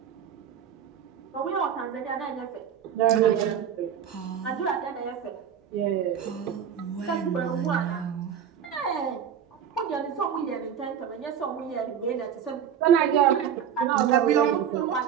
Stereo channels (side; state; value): left; quieter; 8.6 dB